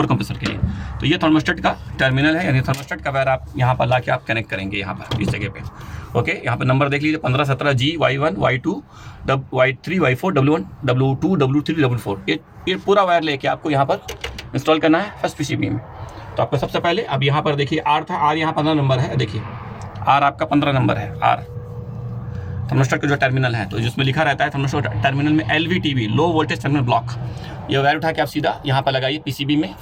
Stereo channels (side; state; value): both; identical; correlation 1.00